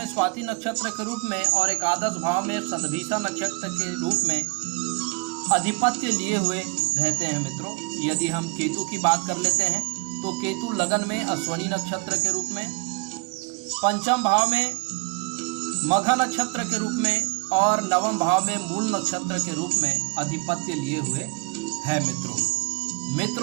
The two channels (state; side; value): quieter; left; 30.8 dB